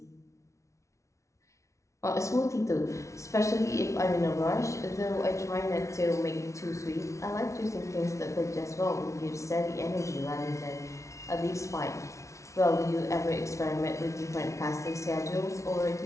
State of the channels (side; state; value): right; late; 0.14 ms